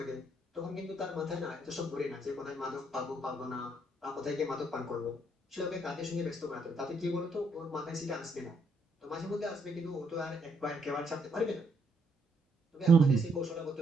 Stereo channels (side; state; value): both; normal; correlation 0.73